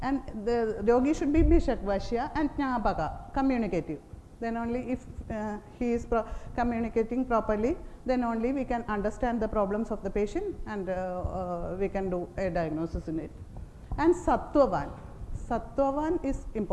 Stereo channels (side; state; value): both; identical; correlation 1.00